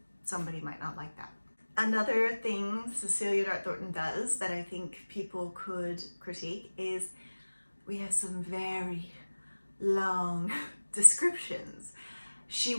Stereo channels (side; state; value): both; inverted; correlation -1.00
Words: somebody might not like that. Another thing Cecilia Dart-Thornton does that I think people could critique is we have some very long descriptions. She